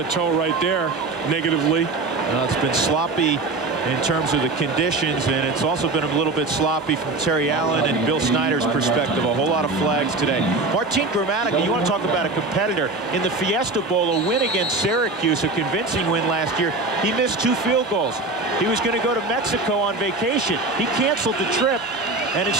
toe right there, negatively. Well, it's been sloppy in terms of the conditions, and it's also been a little bit sloppy from Terry Allen and Bill Snyder's perspective. A whole lot of flags today. Martin Gramatica, you want to talk about a competitor. In the Fiesta Bowl, a win against Syracuse, a convincing win last year, he missed 2 field goals. He was going to go to Mexico on vacation. He canceled the trip and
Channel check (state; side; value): quieter; left; 3.3 dB